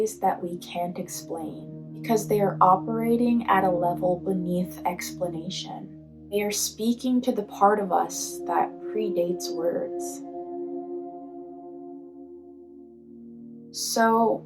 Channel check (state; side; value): identical; both; correlation 1.00